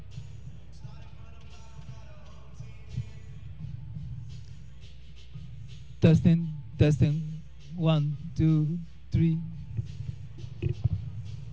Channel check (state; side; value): identical; both; correlation 1.00